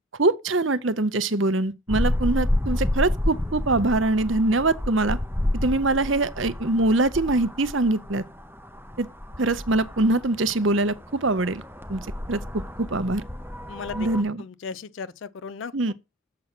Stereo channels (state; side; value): normal; both; correlation 0.38